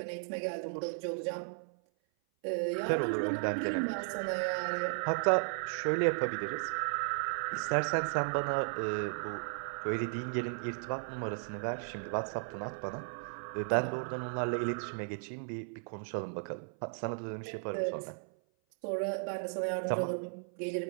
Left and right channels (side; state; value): left; silent; 54 dB below the other